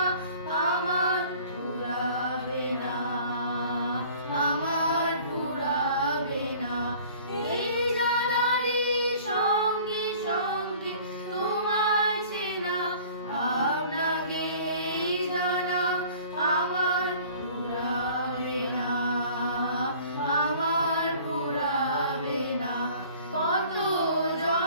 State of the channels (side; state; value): both; inverted; correlation -0.49